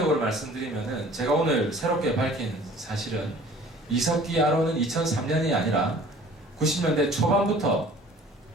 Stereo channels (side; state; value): both; normal; correlation 0.49